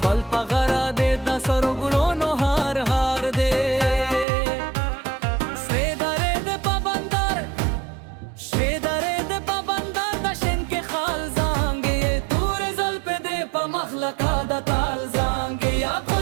ول پغرا دې د سرګلونو هار هار دې سیدارې دې پابندر شیدارې دې پابندر د شین کې خال زانګې تور زلف دې په مخلقا د تال زانګې یا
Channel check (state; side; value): drops out; left; at 4.2 s